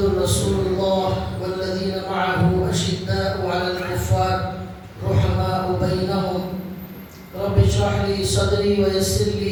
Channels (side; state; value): both; identical; correlation 1.00